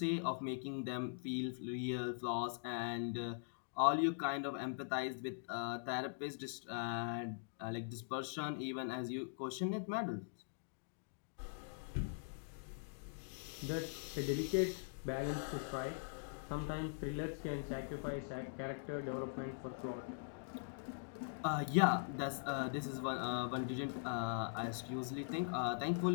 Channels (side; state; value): right; silent; digital silence